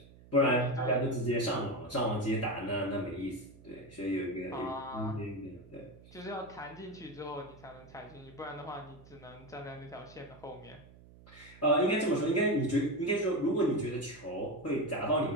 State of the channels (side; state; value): right; noise; hum, 22 dB below the sound